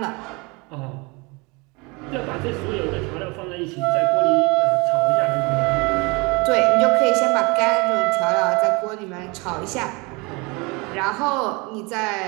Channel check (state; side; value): quieter; left; 27.5 dB